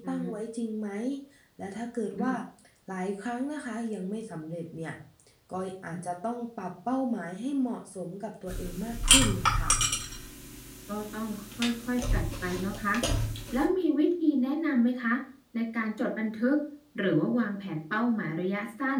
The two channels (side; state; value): both; identical; correlation 1.00